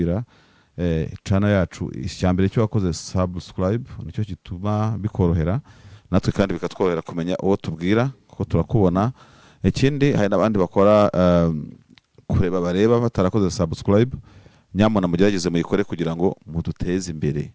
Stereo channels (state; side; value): identical; both; correlation 1.00